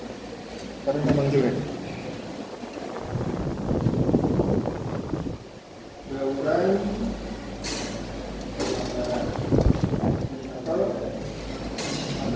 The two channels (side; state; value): both; identical; correlation 1.00